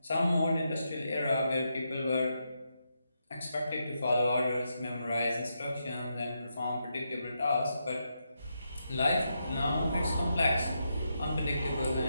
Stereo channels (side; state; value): both; inverted; correlation -0.83